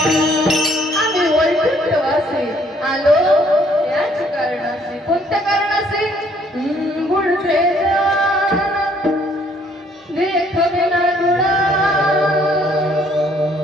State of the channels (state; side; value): normal; both; correlation 0.64